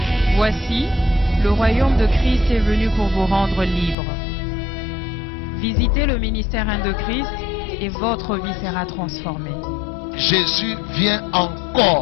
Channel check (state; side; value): drops out; right; at 4.0 s